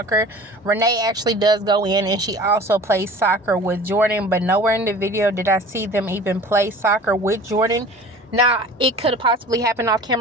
Renee actually does go in, and she also plays soccer with Jordan, but nowhere in the video did I see them even play soccer with Jordan. Now, it could have possibly happened off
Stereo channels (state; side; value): normal; both; correlation 0.43